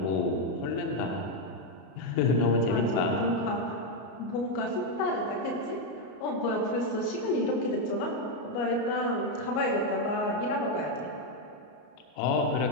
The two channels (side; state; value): right; late; 33 ms